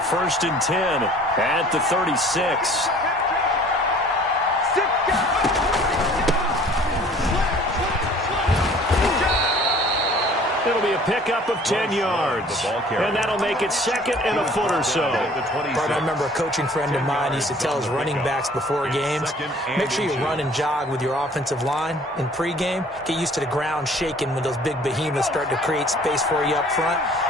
and 10 at the 36. It'll be a pickup of 10 yards. And that'll make it 2nd and a foot or so. Bart, I remember a coaching friend of mine used to tell his running backs before games, make sure you run and jog with your offensive line in pregame. Get used to the ground shaking when those big behemoths start to create space for you up front.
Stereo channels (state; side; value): normal; both; correlation 0.52